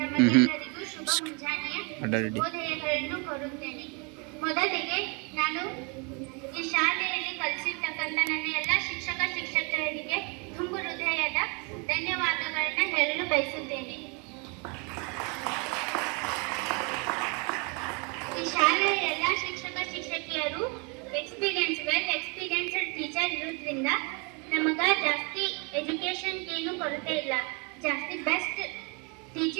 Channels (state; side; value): quieter; left; 32.8 dB